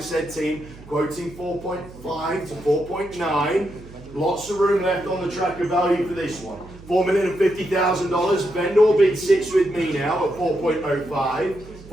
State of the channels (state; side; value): noise; right; hum, 19 dB below the sound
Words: team, quoting 4.5 to 4.9. Lots of room left on the tracker value for this one. $4,050,000. Vendor bid sits with me now at 4.05.